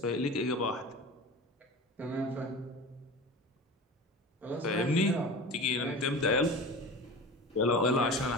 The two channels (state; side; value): normal; both; correlation 0.32